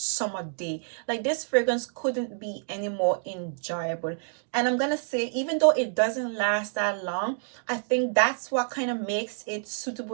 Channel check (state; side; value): silent; left; 59 dB below the other